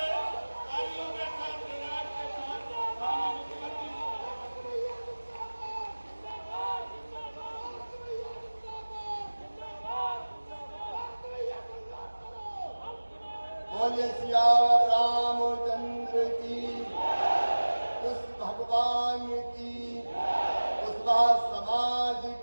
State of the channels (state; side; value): inverted; both; correlation -1.00